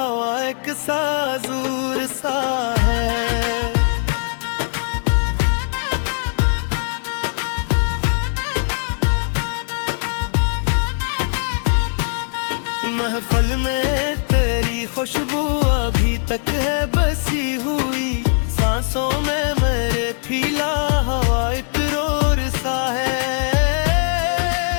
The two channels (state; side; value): silent; right; 60 dB below the other